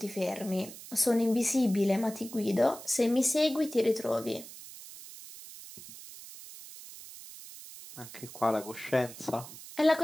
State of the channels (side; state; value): right; noise; hiss, 15 dB below the sound